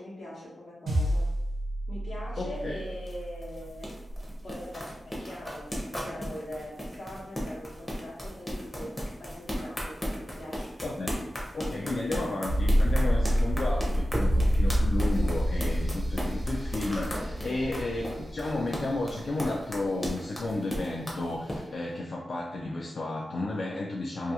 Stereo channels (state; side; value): normal; both; correlation 0.93